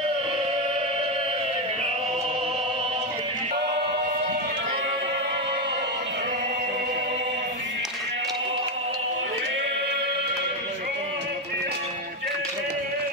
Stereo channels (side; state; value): both; normal; correlation 0.09